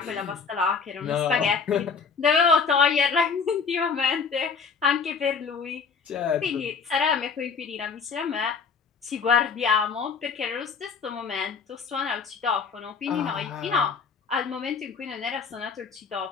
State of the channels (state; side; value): quieter; right; 5.5 dB